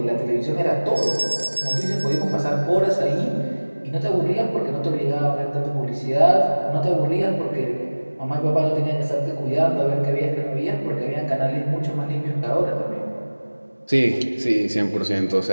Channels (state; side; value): inverted; both; correlation -1.00